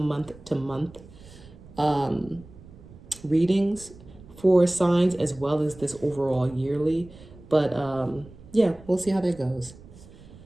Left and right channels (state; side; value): noise; right; rumble, 20 dB below the sound